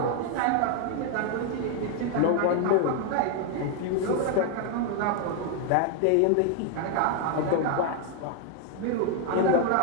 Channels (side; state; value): both; different; correlation 0.00